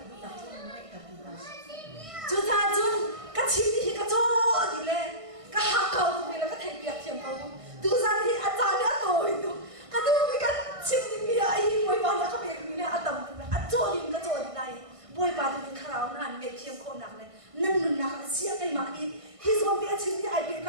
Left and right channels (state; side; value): late; left; 1.6 ms